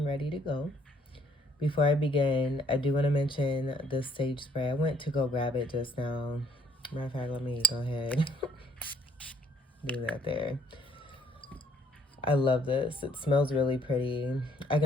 ready to go. Before I begin, I do want to mention this sage spray. I went to go grab it just now. Matter of fact, let me go ahead. Do that there. I love this. It smells really pretty. I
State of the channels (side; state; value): both; normal; correlation 0.63